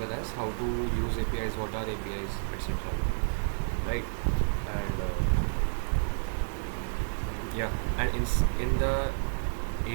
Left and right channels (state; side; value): silent; left; digital silence